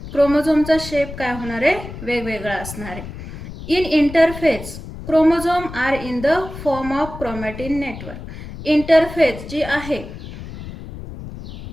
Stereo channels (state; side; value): noise; left; rumble, 11 dB below the sound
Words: क्रोमोझोमचा शेप काय होणार आहे? वेगवेगळा असणार आहे. In interphase chromosome are in the form of chromatin network. Interphase जी आहे